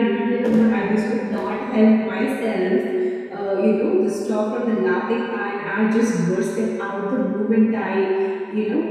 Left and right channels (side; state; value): both; identical; correlation 1.00